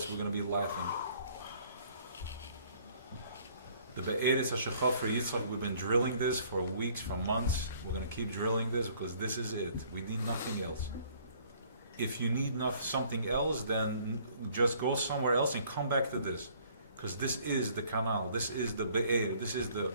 we're going to be laughing. The Be'eretz HaShechaf for Yitzchak, we've been drilling this for weeks, for months. We're going to keep drilling this because this is it. We need nothing else. If you need something else, then just go somewhere else and come back to this. Because this is the canal, this is the Be'er, this is the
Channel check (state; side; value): inverted; both; correlation -0.59